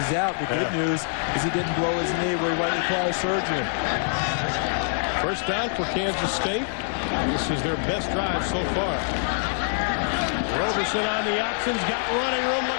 out. The good news is he didn't blow his knee where he might require surgery. First down for Kansas State. This is their best drive so far. Roberson on the options, got running room, look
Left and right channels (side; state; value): right; silent; digital silence